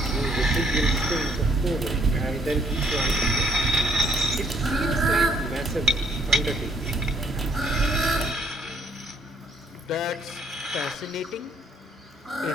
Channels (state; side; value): normal; both; correlation 0.66